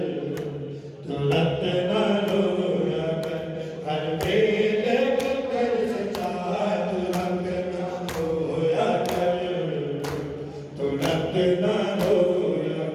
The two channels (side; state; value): both; identical; correlation 1.00